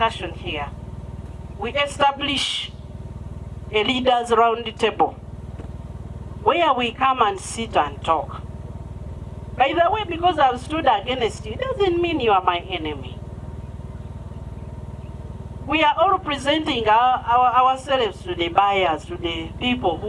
here, we establish a leaders round table where we come and sit and talk. By the way, because I've stood against you, doesn't mean you are my enemy. We are all presenting ourselves to the buyers, to the people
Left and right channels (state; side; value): identical; both; correlation 1.00